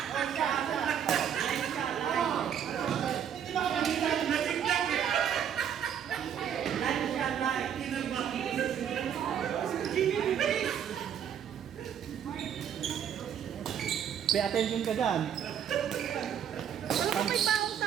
Pay attention ka dyan. Alam ko may baong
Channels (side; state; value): left; quieter; 8.8 dB